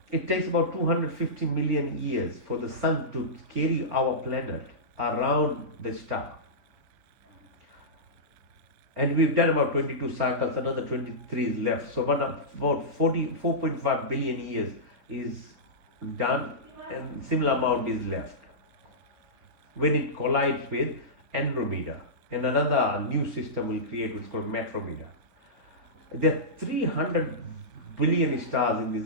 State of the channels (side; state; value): left; late; 4.3 ms